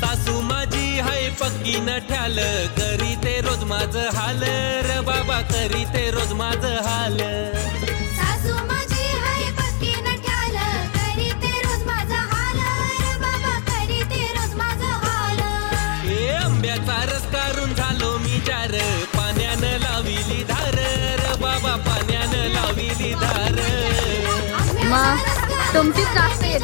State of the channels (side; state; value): right; silent; 58 dB below the other